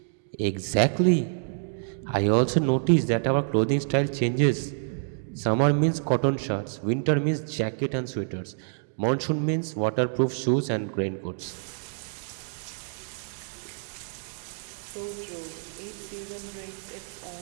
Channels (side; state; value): left; silent; digital silence